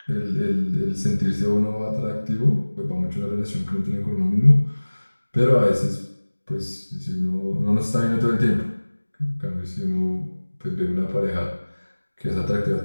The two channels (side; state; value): both; inverted; correlation -1.00